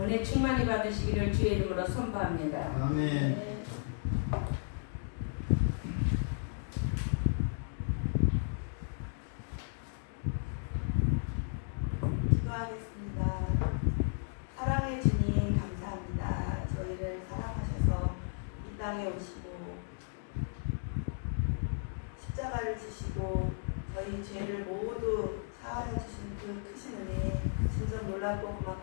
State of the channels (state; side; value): silent; right; digital silence